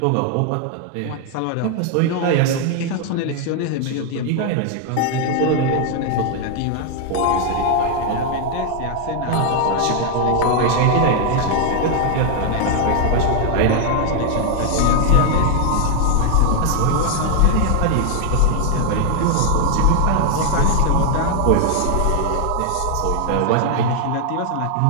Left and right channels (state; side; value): different; both; correlation 0.00